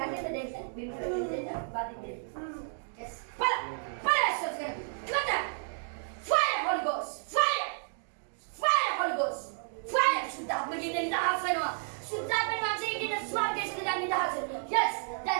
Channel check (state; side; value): silent; left; digital silence